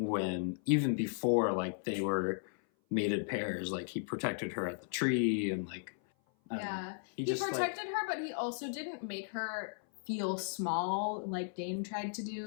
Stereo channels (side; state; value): right; silent; 54 dB below the other